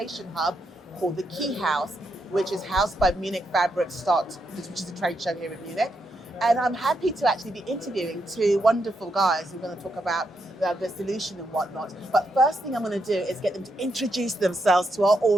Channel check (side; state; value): both; normal; correlation 0.81